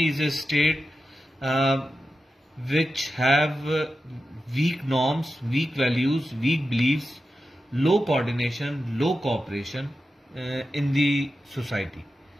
is a state which have weak norms, weak values, weak beliefs, low coordination, low cooperation in the society.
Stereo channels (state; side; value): normal; both; correlation 0.91